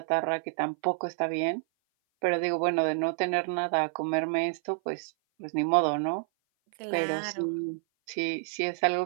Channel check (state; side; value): silent; left; 56 dB below the other